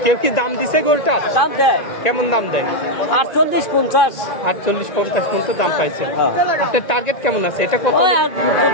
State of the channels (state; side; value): late; right; 2.5 ms